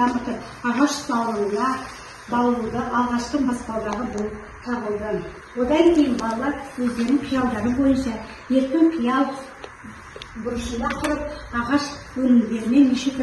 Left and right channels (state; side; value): identical; both; correlation 1.00